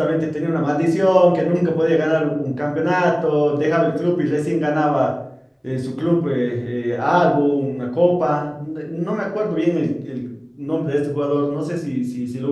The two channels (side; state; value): both; identical; correlation 1.00